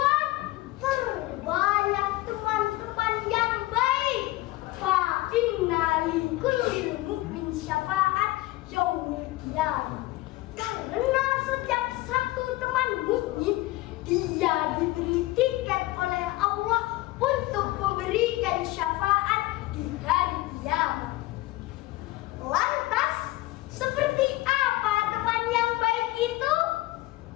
perbanyak teman-teman yang baik. Fa inna li kullil mu'min syafa'at yaumil qiyamah. Karena setiap satu teman mukmin, dia diberi tiket oleh Allah untuk memberikan syafaat di hari kiamat. Lantas, seperti apa teman yang baik itu?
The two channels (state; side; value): quieter; right; 18.8 dB